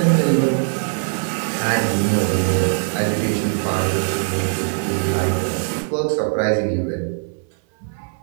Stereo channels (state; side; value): silent; left; 57 dB below the other